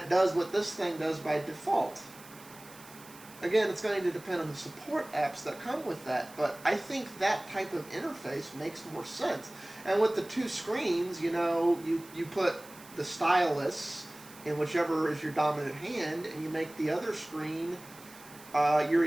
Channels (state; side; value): noise; right; hiss, 20 dB below the sound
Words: does what this thing does by default. Again, it's going to depend on the support apps that come with that, but I think that type of interface makes more sense. And with the two screens, you put the stylus in whichever is your dominant hand, and you make the other screen your